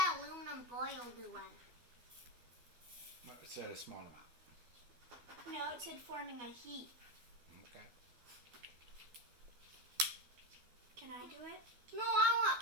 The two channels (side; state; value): left; late; 13 ms